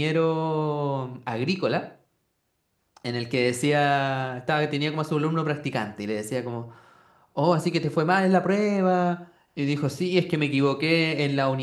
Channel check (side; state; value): both; identical; correlation 1.00